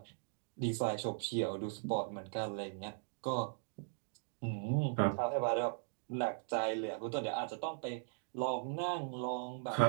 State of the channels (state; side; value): silent; left; digital silence